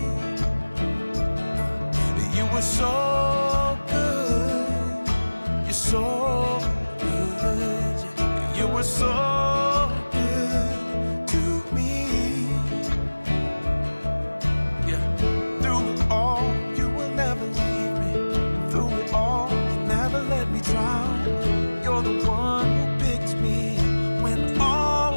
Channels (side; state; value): both; inverted; correlation -1.00